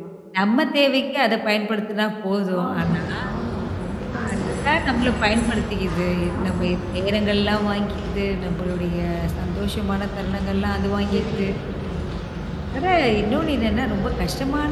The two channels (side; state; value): both; identical; correlation 1.00